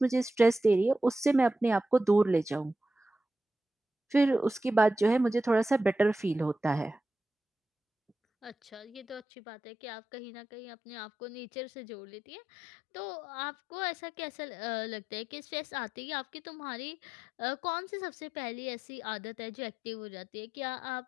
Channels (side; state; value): right; drops out; at 9.2 s